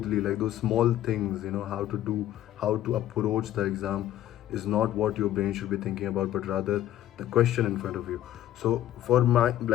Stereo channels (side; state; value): right; quieter; 12.7 dB